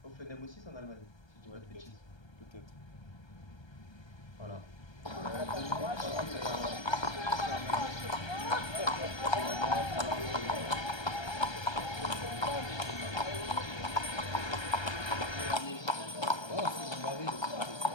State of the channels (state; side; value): late; right; 1.3 ms